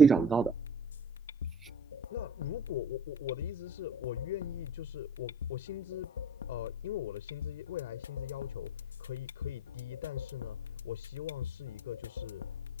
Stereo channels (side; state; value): both; normal; correlation 0.44